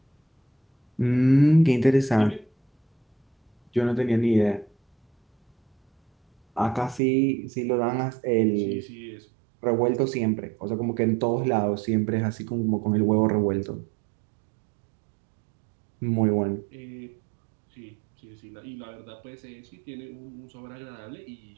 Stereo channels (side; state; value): left; drops out; at 7.0 s